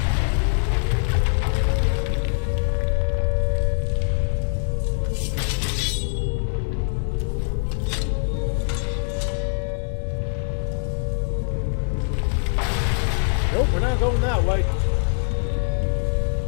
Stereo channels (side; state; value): right; silent; 58 dB below the other